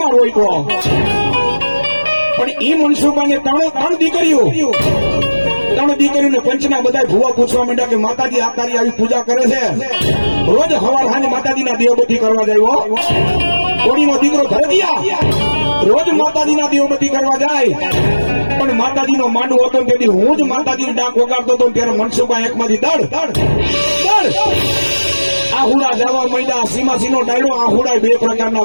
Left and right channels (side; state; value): both; inverted; correlation -1.00